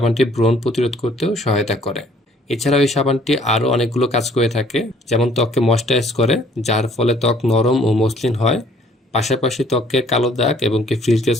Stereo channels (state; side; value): normal; both; correlation 0.59